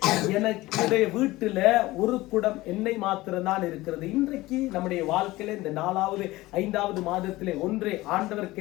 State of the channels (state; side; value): quieter; right; 18.8 dB